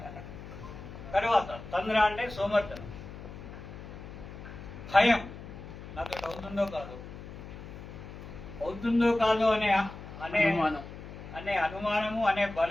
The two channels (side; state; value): left; noise; hum, 13 dB below the sound